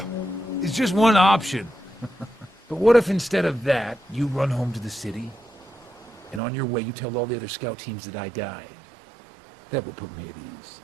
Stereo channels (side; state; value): left; drops out; at 6.4 s